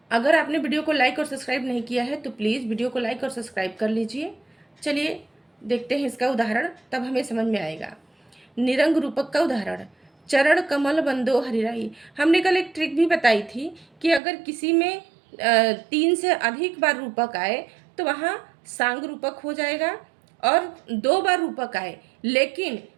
अगर आपने वीडियो को लाइक और सब्सक्राइब नहीं किया है तो प्लीज़ वीडियो को लाइक और सब्सक्राइब कर लीजिए। चलिए देखते हैं इसका उदाहरण, तब हमें समझ में आएगा। निरंग रूपक का उदाहरण, चरण कमल बंदो हरिराई। हमने कल एक ट्रिक भी बताई थी कि अगर किसी में 3 से अधिक बार रूपक आए तो वहाँ सांग रूपक हो जाएगा, और 2 बार रूपक आए लेकिन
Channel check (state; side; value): drops out; left; at 14.2 s